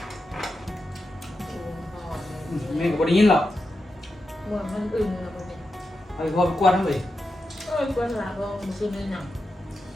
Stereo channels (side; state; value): both; normal; correlation 0.89